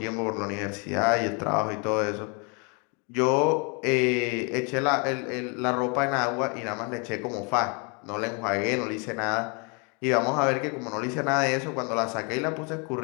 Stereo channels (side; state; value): right; quieter; 33.8 dB